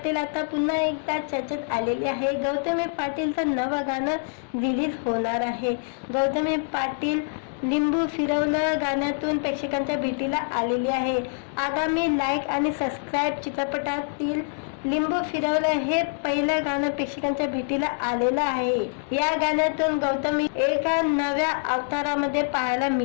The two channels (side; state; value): right; silent; digital silence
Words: आता पुन्हा एकदा चर्चेत आलेली आहे. गौतमी पाटीलचं नवं गाणं रिलीज होणार आहे. गौतमी पाटील लिंबू फिरवलं गाण्यातून प्रेक्षकांच्या भेटीला आलेली आहे. आगामी लाईक आणि सबस्क्राईब चित्रपटातील लिंबू फिरवलं हे पहिलं गाणं प्रेक्षकांच्या भेटीला आलेलं आहे. या गाण्यातून गौतमी एका नव्या अवतारामध्ये पाहायला